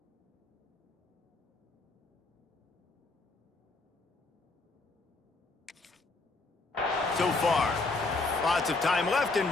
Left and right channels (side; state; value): right; quieter; 3.5 dB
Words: So far, lots of time left and